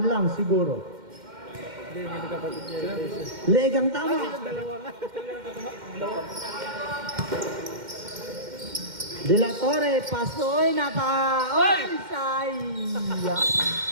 lang siguro. Hindi, hindi nagkapatid niya. Legang tama. De La Torre, pasoy, Oy, sayang.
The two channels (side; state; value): left; late; 2.1 ms